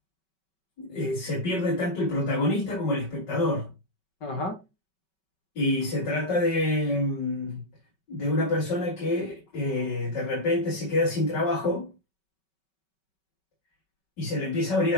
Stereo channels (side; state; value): right; late; 5.3 ms